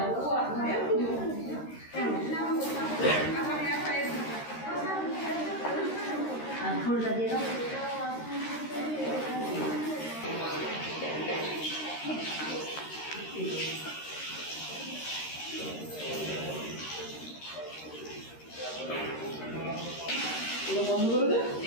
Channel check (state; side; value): late; right; 13 ms